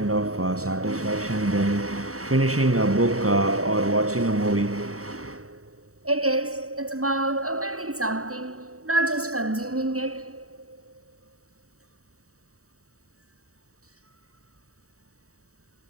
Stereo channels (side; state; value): left; late; 0.65 ms